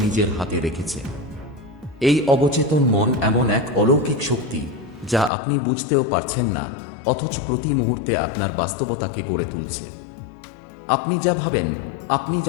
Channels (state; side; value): drops out; right; at 5.3 s